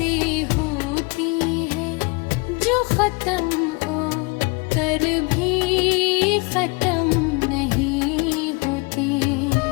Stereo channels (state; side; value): quieter; right; 28.7 dB